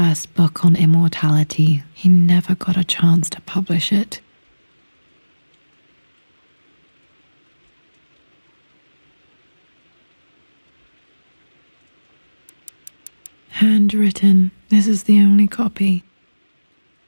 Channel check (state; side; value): inverted; both; correlation -1.00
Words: book on immortality. He never got a chance to publish it. Handwritten. This is the only copy.